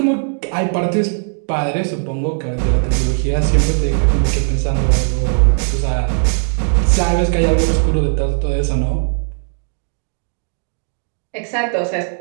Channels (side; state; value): left; silent; digital silence